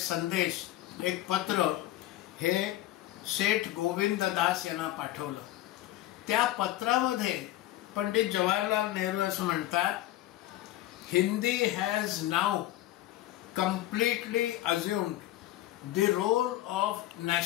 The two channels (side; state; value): right; quieter; 14.8 dB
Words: एक पत्र हे सेठ गोविंद दास यांना पाठवलं. त्या पत्रामध्ये पंडित जवाहरलाल नेहरू असं म्हणतात, Hindi has now completely assumed the role of